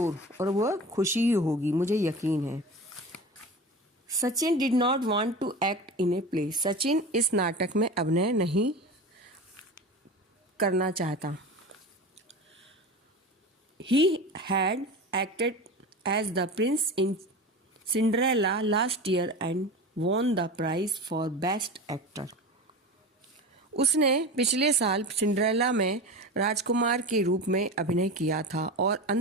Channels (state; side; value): normal; both; correlation 0.30